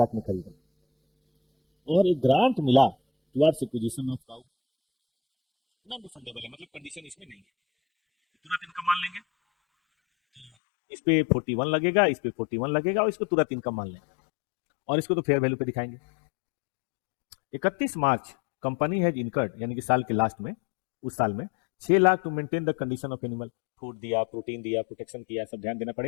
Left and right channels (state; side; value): drops out; right; at 10.5 s